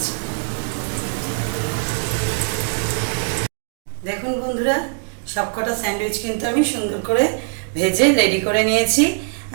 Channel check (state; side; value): silent; left; 60 dB below the other